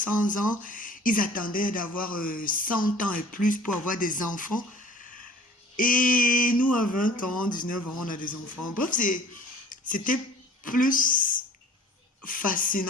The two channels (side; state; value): both; normal; correlation 0.47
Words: ans. Ils attendaient d'avoir 100 ans et plus pour avoir des enfants. Et nous, à 20 ans, 19 ans, on a des enfants. Bref, c'était plus